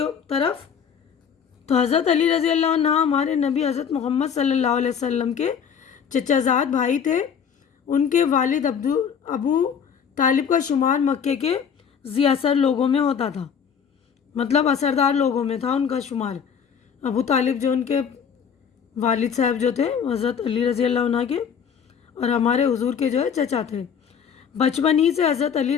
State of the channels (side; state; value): right; quieter; 7.3 dB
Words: طرف۔ تو حضرت علی رضی اللہ عنہ ہمارے نبی حضرت محمد صلی اللہ علیہ وسلم کے چچا زاد بھائی تھے۔ ان کے والد ابو طالب کا شمار مکے کے ذی اثر لوگوں میں ہوتا تھا، مطلب اثردار لوگوں میں تھا ان کا شمار۔ ابو طالب جو ان کے والد صاحب جو تھے حضرت علی رضی اللہ عنہ کے، اور ہمارے حضور کے جو ہے چچا تھے۔ بچپن ہی سے حضرت